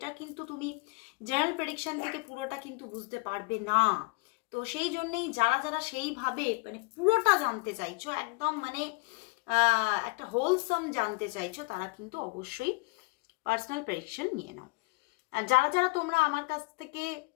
কিন্তু তুমি জেনারেল প্রেডিকশন থেকে পুরোটা কিন্তু বুঝতে পারবে না। তো সেই জন্যেই যারা যারা সেইভাবে মানে পুরোটা জানতে চাইছো, একদম মানে একটা হোলসাম জানতে চাইছো, তারা কিন্তু অবশ্যই পার্সোনাল প্রেডিকশন নিয়ে নাও। আর যারা যারা তোমরা আমার কাছ থেকে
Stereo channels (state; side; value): quieter; right; 28.3 dB